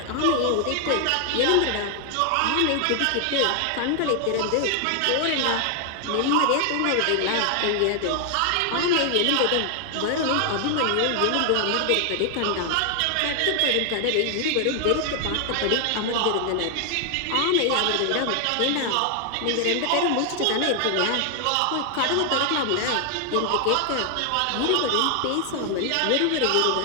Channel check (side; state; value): both; different; correlation 0.00